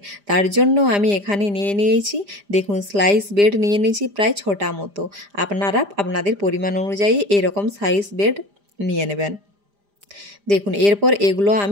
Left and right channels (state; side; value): late; left; 5.0 ms